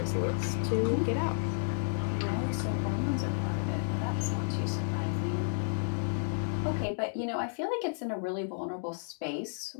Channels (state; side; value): silent; right; digital silence